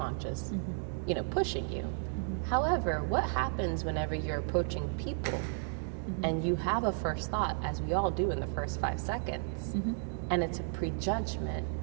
pushing you. However, what happens whenever you're approaching people and you have a first thought, as we all do in the first 5 seconds, and it's a prejudgment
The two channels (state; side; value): silent; left; 55 dB below the other